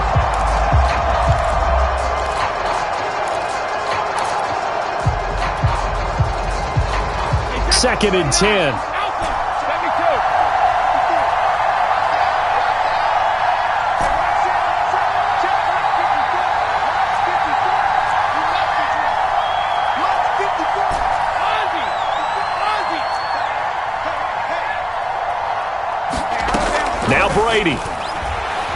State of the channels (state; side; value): identical; both; correlation 1.00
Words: Second and 10. Now Brady.